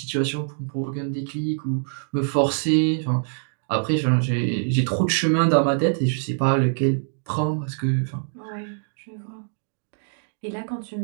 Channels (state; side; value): silent; left; digital silence